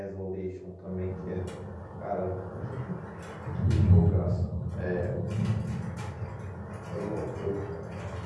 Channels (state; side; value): identical; both; correlation 1.00